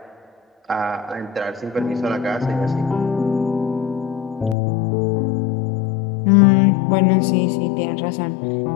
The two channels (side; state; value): right; drops out; at 4.5 s